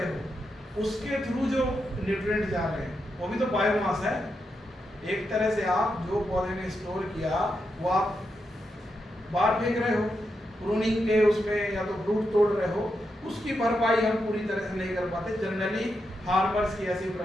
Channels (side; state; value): both; normal; correlation 0.85